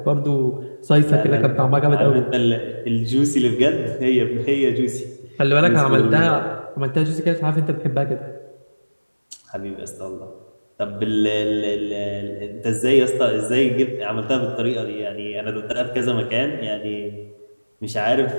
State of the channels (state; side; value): inverted; both; correlation -1.00